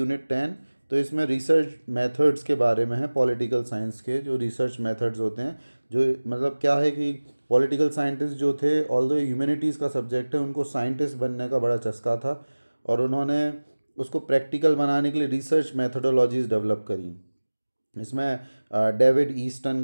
10, तो इसमें रिसर्च मेथड्स के बारे में है, पॉलिटिकल साइंस के जो रिसर्च मेथड्स होते हैं, जो मतलब क्या है कि पॉलिटिकल साइंटिस्ट जो थे, ऑल्दो ह्यूमैनिटीज़ का सब्जेक्ट है, उनको साइंटिस्ट बनने का बड़ा चस्का था और उन्होंने उसको प्रैक्टिकल बनाने के लिए रिसर्च मेथडोलॉजीज़ डेवलप करी। इसमें डेविड ईस्टन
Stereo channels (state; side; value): inverted; both; correlation -1.00